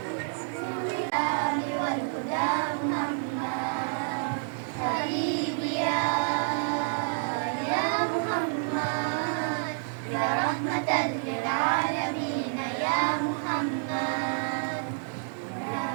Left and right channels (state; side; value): silent; left; digital silence